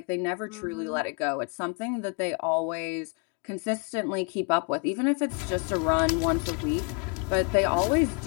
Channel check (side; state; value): right; quieter; 36.9 dB